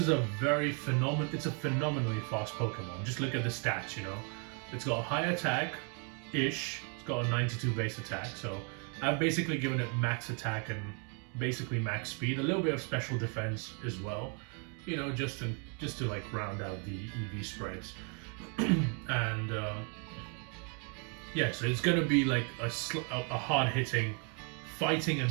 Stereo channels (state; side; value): quieter; left; 37.8 dB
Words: a phenomenally fast Pokemon. Just look at the stats, you know. It's got a high attack-ish. It's got a 92 base attack, so I've basically given it max attack and basically max speed. A little bit of special defense as well, you know, just to like round out the EV spreads. And yeah, so it's gonna be like a hard-hitting, fighting and